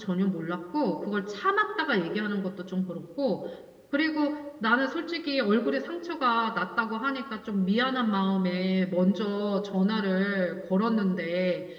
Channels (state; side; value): identical; both; correlation 1.00